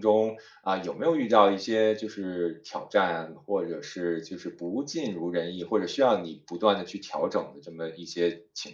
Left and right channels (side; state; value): both; identical; correlation 1.00